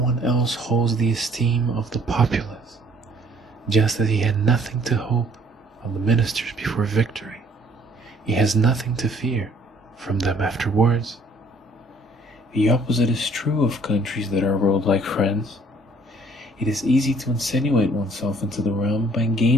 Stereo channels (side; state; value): both; normal; correlation 0.60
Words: else holds the esteem of the populace, just as he had nothing to hope of the ministers before victory. He has nothing to fear from them afterwards. The opposite is true of countries that are ruled like France. It is easy to insinuate oneself into the realm by